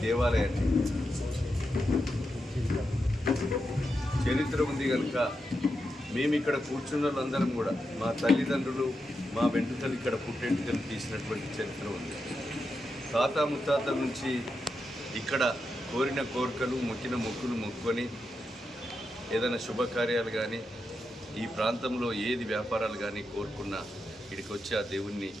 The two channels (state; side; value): normal; both; correlation 0.87